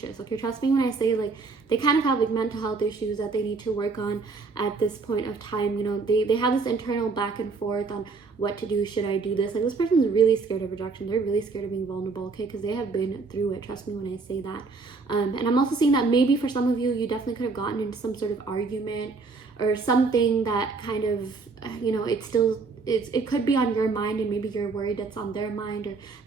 okay? Trust me when I say, like, they kind of have like mental health issues that they need to work on at this point of time. You know, they have this internal back and forth on what to do. Should I do this? Like, this person's really scared of rejection. They're really scared of being vulnerable, okay? Because they have been through it. Trust me when I say that. And I'm also seeing that maybe for some of you, you definitely could have gotten into some sort of argument or something that kind of, you know, it could be on your mind, and maybe you're worried that's on their mind, or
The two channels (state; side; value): quieter; left; 4.3 dB